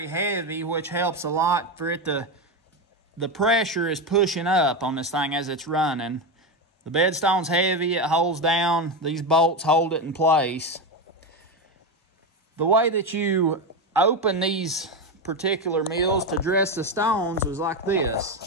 heavy, which helps a lot for it to, the pressure is pushing up on this thing as it's running. The bed stone's heavy, it holds down, these bolts hold it in place. The way that you open these particular mills to dress the stones was like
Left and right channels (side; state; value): both; normal; correlation 0.13